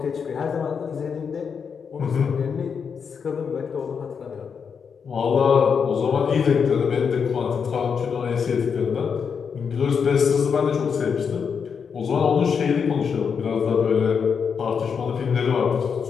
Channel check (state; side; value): quieter; right; 6.4 dB